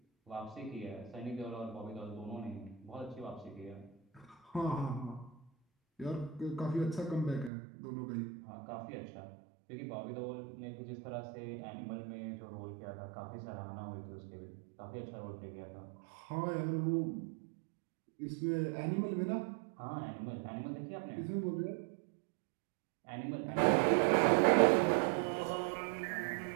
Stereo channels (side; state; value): left; drops out; at 7.5 s